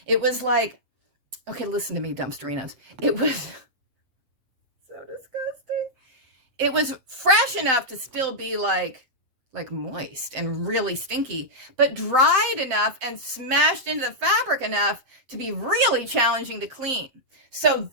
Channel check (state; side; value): late; left; 7.7 ms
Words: It was like, okay, listen to me, dumpsterinos. It was so disgusting. It was fresh enough to still be like moist and really stinky, but dried enough and smashed into the fabric enough to be really challenging to clean. So